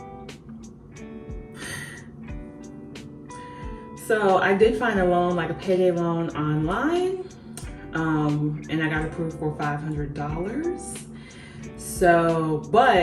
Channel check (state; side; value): identical; both; correlation 1.00